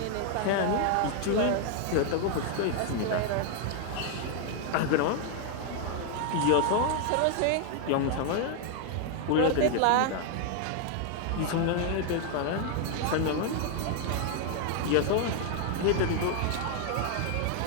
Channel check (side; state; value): both; different; correlation 0.00